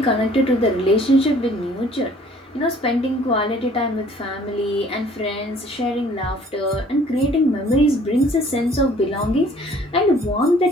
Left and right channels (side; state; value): both; normal; correlation 0.55